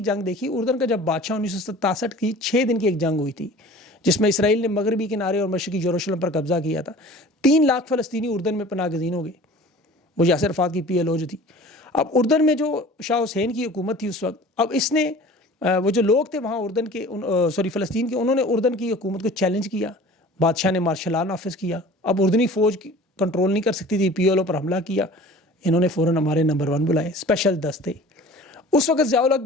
جنگ دیکھی. اردن کا جب بادشاہ 1967 کی 6 دن کی ایک جنگ ہوئی تھی جس میں اسرائیل نے مغربی کنارے اور مشرقی یروشلم پر قبضہ کیا تھا. 3 لاکھ فلسطینی اردن میں پناہ گزین ہو گئے. وہ یاسر عرفات کی PLO جو تھی. اب اردن میں جو شاہ حسین کی حکومت تھی اس وقت، اب اس نے وہ جو لوگ تھے وہاں اردن کے فلسطین کے، انہوں نے اردن کی حکومت کو چیلنج کیا. بادشاہ نے مارشل لا نافذ کیا. اب اردنی فوج کنٹرول نہیں کر سکتی تھی، PLO پر حملہ کیا. انہوں نے فوراً ہمارے نمبر 1 بلائے، اسپیشل دستے. اس وقت ضیاء الحق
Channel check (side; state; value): both; normal; correlation 0.43